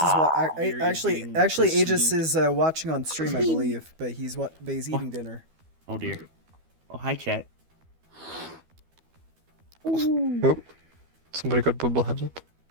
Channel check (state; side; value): late; left; 12 ms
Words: You're getting actually Aegis pursued. is watching on stream, I believe, but he's eating dinner. Oh dear. Oh hi chat. Oh, somebody got bubble headed.